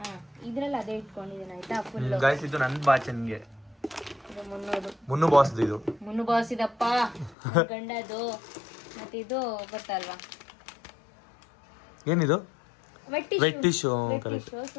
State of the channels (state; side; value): drops out; right; at 7.4 s